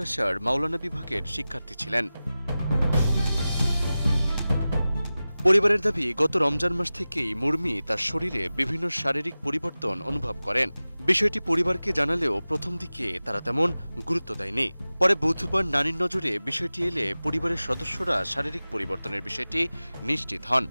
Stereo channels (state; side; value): inverted; both; correlation -0.96